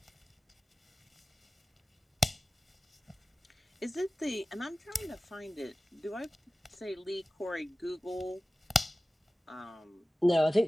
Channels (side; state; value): both; normal; correlation 0.96